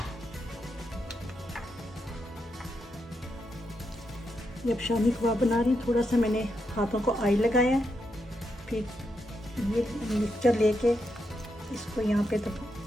जब शामी कबाब बना रही हूँ, थोड़ा सा मैंने हाथों को ऑयल लगाया है, फिर ये मिक्सचर लेके इसको यहाँ पे दबा।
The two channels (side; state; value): both; normal; correlation 0.83